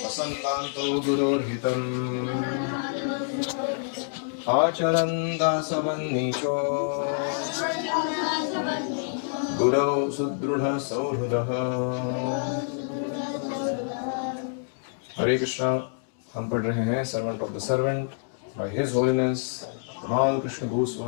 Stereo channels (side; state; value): right; silent; digital silence